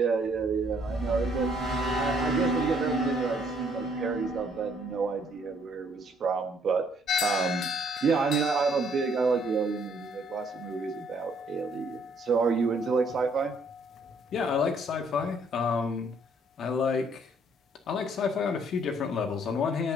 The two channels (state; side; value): normal; both; correlation 0.65